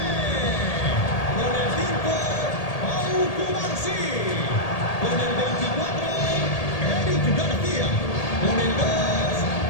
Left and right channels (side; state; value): right; late; 1.8 ms